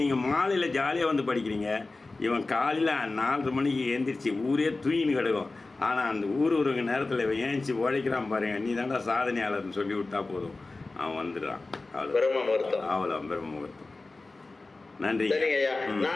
நீங்கள் மாலையில் ஜாலியாக வந்து படிக்கிறீங்க, இவன் காலையில் 4:30 மணிக்கு எழுந்திரிச்சு ஊரே தூயின்னு கிடக்கும். ஆனால் அந்த ஊருக்கு நேரத்தில் இவன் ஏஞ்சி உழைக்கிறான் பாருங்க, நீ தாண்டா சாதனையாளர்னு சொல்லி விட்டா போதும், அவன் வந்துடுறான். அவ்வளோ பிரம்ம முகூர்த்தம். நன்றி. சரிங்க ஐயா.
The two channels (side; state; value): right; quieter; 3.4 dB